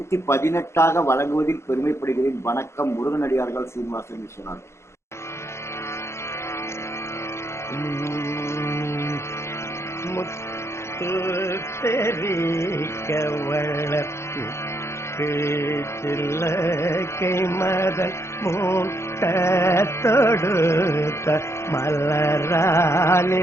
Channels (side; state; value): right; late; 0.13 ms